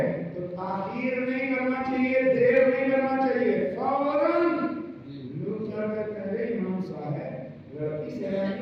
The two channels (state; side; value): identical; both; correlation 1.00